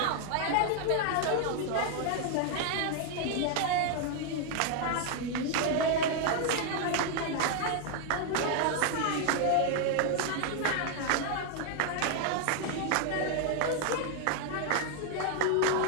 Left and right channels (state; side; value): different; both; correlation 0.00